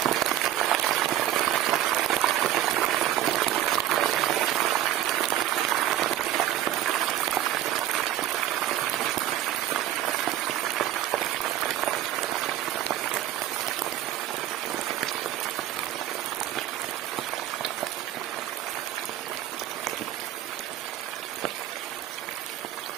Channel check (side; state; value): left; quieter; 12.7 dB